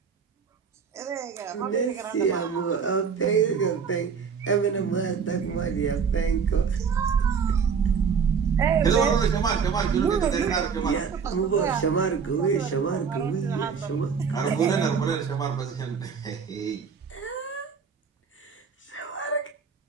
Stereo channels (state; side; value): quieter; left; 6.2 dB